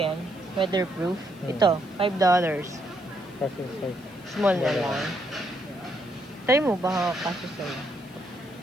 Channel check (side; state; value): left; noise; hiss, 26 dB below the sound